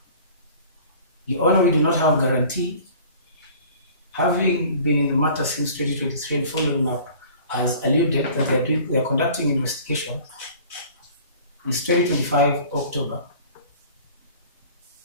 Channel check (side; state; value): both; inverted; correlation -0.47